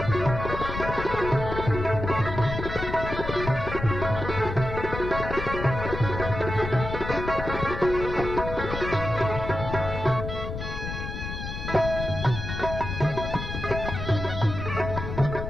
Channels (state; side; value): noise; left; rumble, 6 dB below the sound